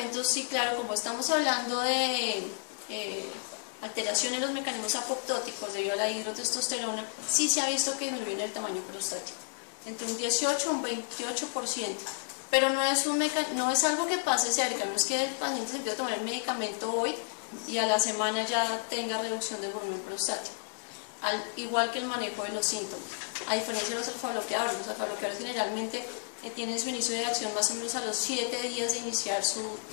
sí, claro, como estamos hablando de alteración en los mecanismos apoptóticos debido a la hidrotestosterona, sí se ha visto que disminuyen el tamaño prostático, entre un 18 a un 28%, pero no es algo que pase cerca, no es que el paciente se empiece a tomar el medicamento hoy y a la semana ya tenga reducción del volumen prostático, igual que el manejo de los síntomas. A diferencia de los alfa-bloqueadores generalmente tienen su inicio de acción más o menos a los 7 días de iniciar su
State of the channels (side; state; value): right; silent; 57 dB below the other